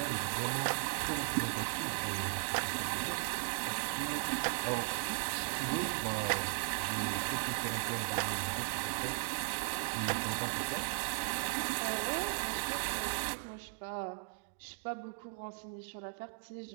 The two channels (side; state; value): left; silent; digital silence